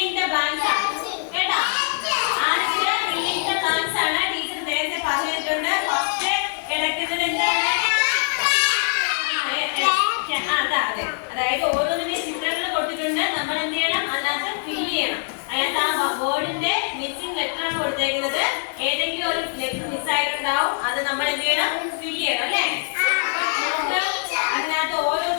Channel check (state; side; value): silent; right; 63 dB below the other